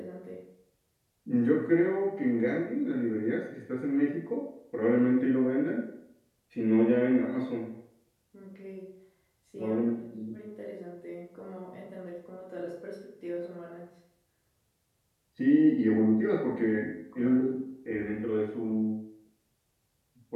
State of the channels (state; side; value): identical; both; correlation 1.00